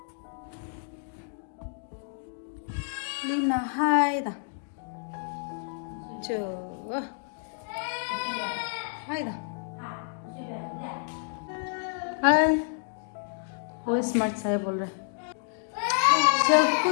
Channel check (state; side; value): silent; right; digital silence